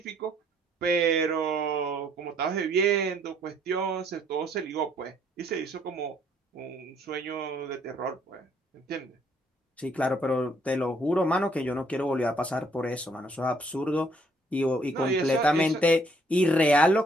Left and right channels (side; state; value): both; normal; correlation 0.66